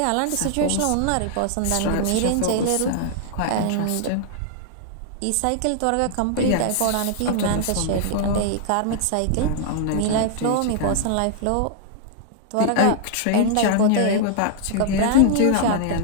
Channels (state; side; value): different; both; correlation -0.01